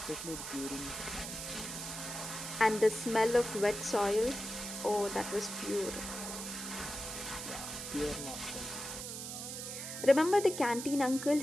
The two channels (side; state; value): right; noise; hiss, 7 dB below the sound